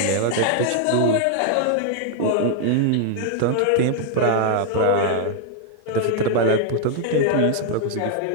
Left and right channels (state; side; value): different; both; correlation 0.00